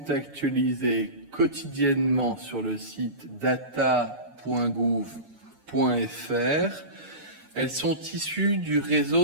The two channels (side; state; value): left; late; 6.8 ms